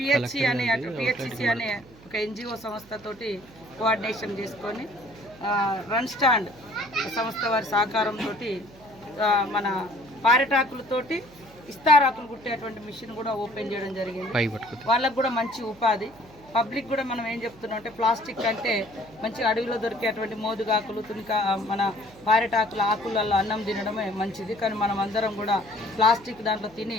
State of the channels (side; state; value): right; noise; hum, 23 dB below the sound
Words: అనే ఒక ఎన్జిఓ సంస్థతోటి కోఆర్డినేషన్ చేసుకొని రన్ స్టాండ్ సంస్థ వారి సహకారంతో మన పారెటాకులతోటి ఇస్తారాకులు కుట్టేటువంటి మిషన్ కూడా ఓపెన్ చేయడం జరిగింది. వాళ్ళకు కూడా మంచి ఉపాధి. పబ్లిక్ కూడా మనం ఏం చెప్తున్నాం అంటే, ప్లాస్టిక్ అంటే మంచి అడవిలో దొరికేటువంటి మోదుగాకులు, తునిక, మన పారెటాకుల ఆకులలో అన్నం తినడమే మంచిది. కానీ మనం అందరం కూడా ప్లాస్టిక్ దాంట్లో తిని